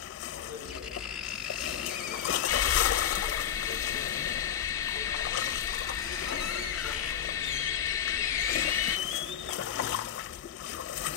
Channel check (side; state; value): right; quieter; 9.4 dB